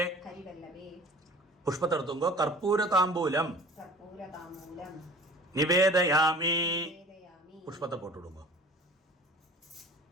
ഹരിവല്ലഭേ. പുഷ്പത്തെടുത്തുങ്കോ. കർപ്പൂര താമ്പൂലം കർപ്പൂരതാമ്പൂലം നിവേദയാമി. വേദയാമി. പുഷ്പത്തെ പോട്ടുവിടുങ്കോ.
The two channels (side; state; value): both; normal; correlation 0.44